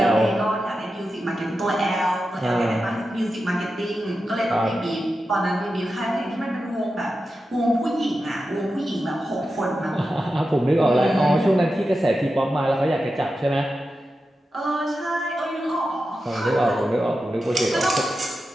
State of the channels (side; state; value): both; normal; correlation 0.91